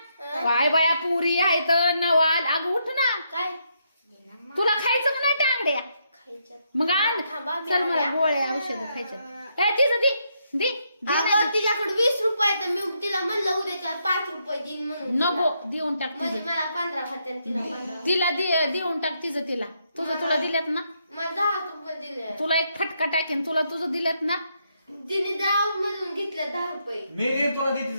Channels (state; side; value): inverted; both; correlation -0.77